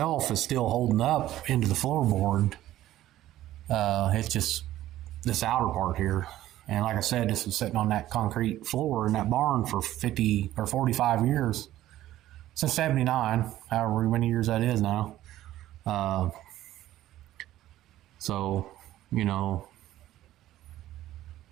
is still holding up into the floorboard. It's just this outer part here. And like I said, this was sitting on that concrete floor in that barn for 50 or 45 years. Since 79, however many years that is now. So,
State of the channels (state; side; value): quieter; left; 14.1 dB